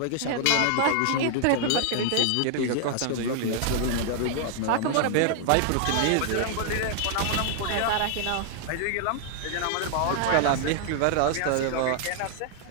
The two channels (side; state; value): both; different; correlation 0.00